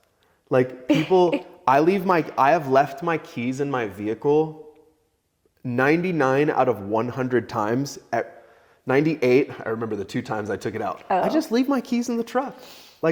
Like people, I have left my keys in my vehicle 99 out of 100 times. At 98, I remember the 2 times I took it out. I just leave my keys in the truck.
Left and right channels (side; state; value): both; identical; correlation 1.00